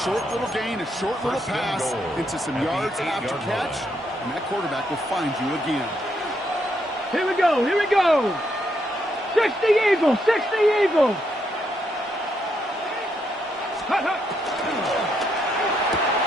short little gain, a short little pass into some yards after catch, and that quarterback will find you again. Here we go. 60 Eagles. 60 Eagles. Hut, hut.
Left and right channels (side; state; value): both; normal; correlation 0.77